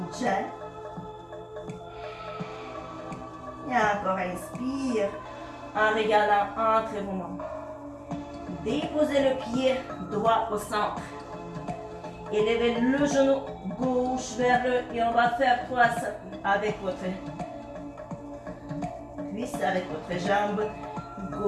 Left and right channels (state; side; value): identical; both; correlation 1.00